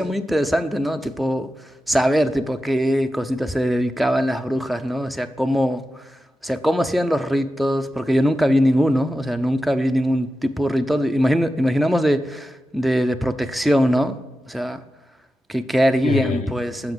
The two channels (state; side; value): normal; both; correlation 0.92